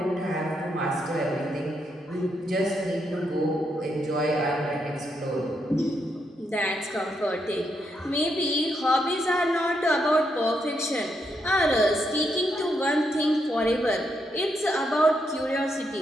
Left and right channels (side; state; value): both; normal; correlation 0.79